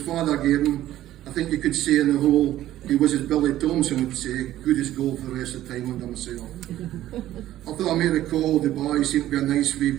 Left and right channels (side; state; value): left; quieter; 13.7 dB